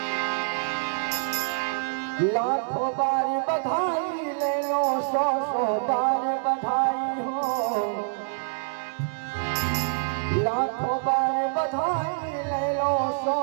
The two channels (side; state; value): left; silent; digital silence